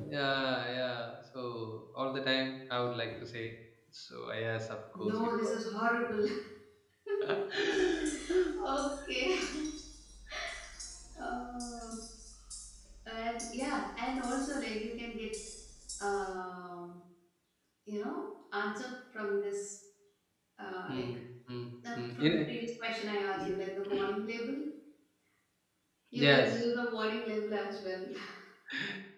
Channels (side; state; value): both; identical; correlation 1.00